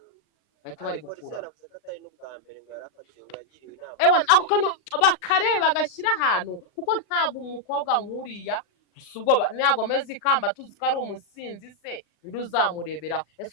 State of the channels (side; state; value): right; late; 39 ms